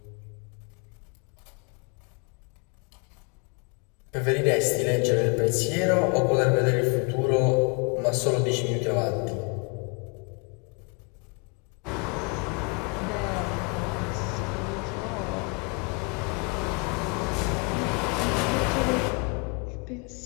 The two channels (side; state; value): right; quieter; 32.8 dB